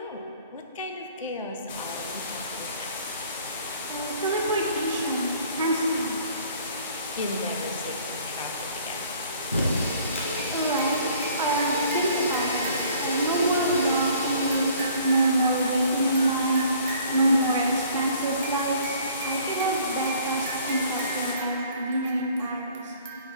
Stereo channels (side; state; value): both; inverted; correlation -0.55